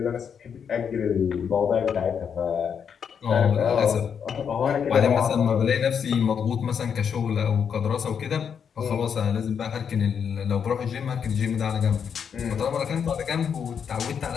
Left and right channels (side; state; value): right; quieter; 7.2 dB